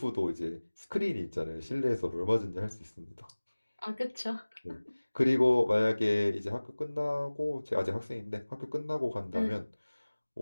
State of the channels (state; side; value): inverted; both; correlation -1.00